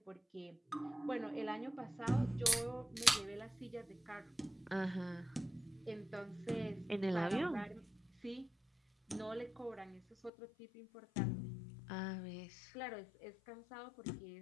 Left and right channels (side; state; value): right; drops out; at 10.3 s